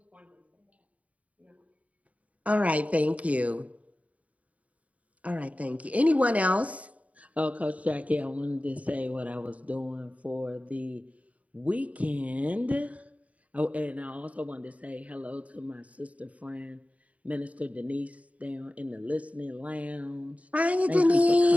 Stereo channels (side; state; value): left; late; 0.068 ms